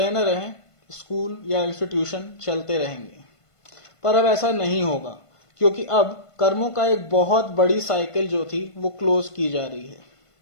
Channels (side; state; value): right; late; 1.5 ms